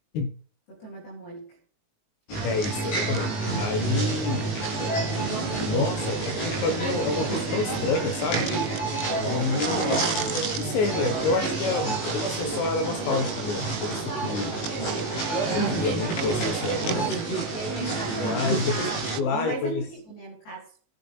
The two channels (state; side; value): late; right; 19 ms